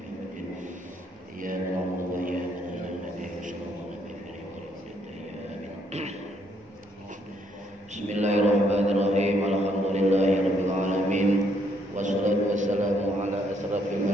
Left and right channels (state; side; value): normal; both; correlation 0.71